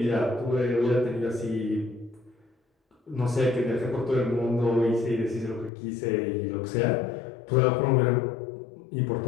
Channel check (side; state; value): right; drops out; at 5.7 s